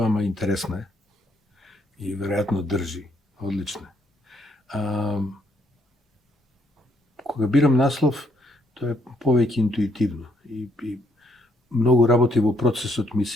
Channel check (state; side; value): normal; both; correlation 0.72